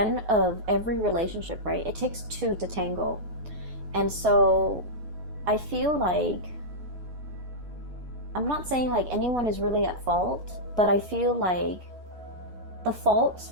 of every relationship, right, it takes two to tango. And so I feel like I'm not saying like anyone is really at fault, but I feel like the fault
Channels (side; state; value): left; late; 9.3 ms